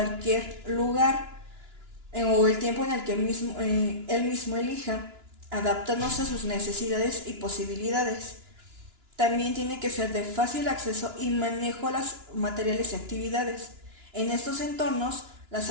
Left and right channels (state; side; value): late; left; 2.9 ms